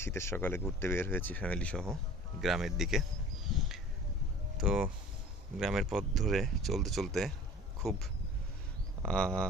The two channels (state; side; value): normal; both; correlation 0.44